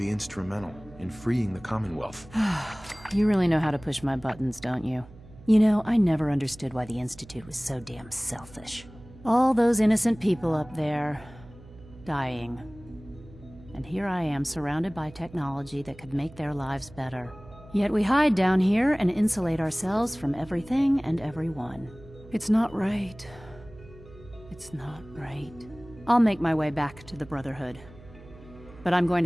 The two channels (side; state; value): right; noise; hum, 20 dB below the sound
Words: instrumental in freeing the Commonwealth. You really know how to push my buttons, don't you? You know, I never understood why the Institute was so damn selfish. All those innocent people up there, dying. And here I am surrounded by technology that could make their lives better. Yet we hide down here and insulate ourselves from everything and everyone. It's not right. It's not right. I'll make my way back to the Brotherhood. But I'm going